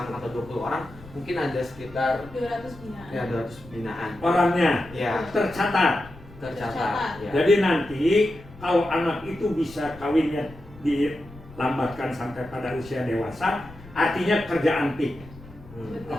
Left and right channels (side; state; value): left; noise; rumble, 19 dB below the sound